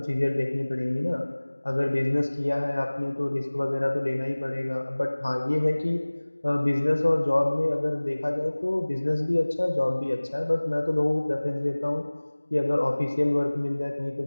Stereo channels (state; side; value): inverted; both; correlation -1.00